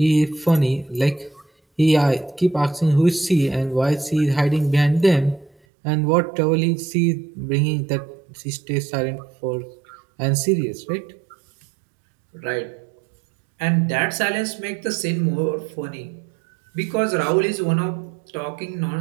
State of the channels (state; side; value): drops out; left; at 5.6 s